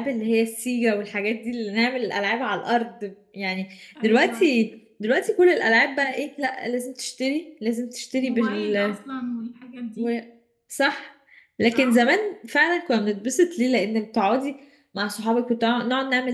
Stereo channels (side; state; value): both; identical; correlation 1.00